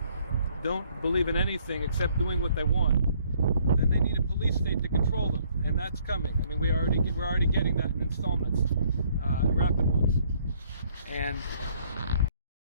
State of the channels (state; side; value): inverted; both; correlation -0.64